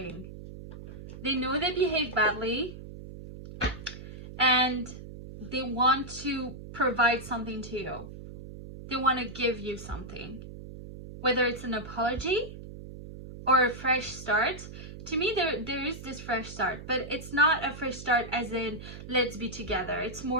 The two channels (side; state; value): right; noise; hum, 13 dB below the sound